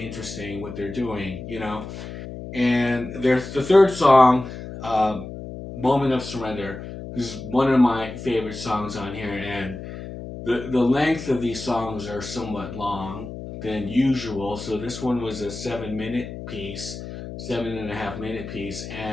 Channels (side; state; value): left; noise; hum, 10 dB below the sound